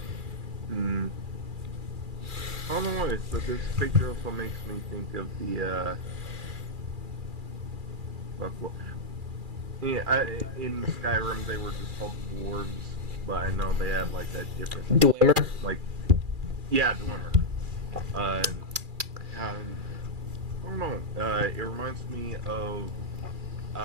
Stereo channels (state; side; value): late; left; 2.4 ms